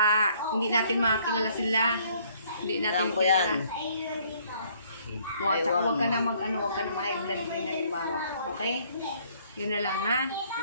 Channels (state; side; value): inverted; both; correlation -0.63